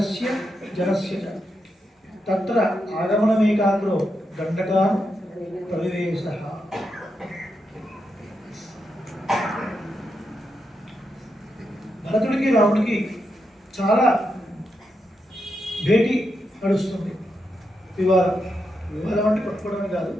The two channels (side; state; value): both; normal; correlation 0.85